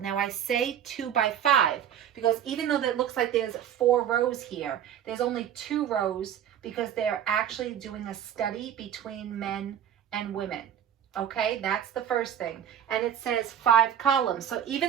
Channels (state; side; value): quieter; left; 9.8 dB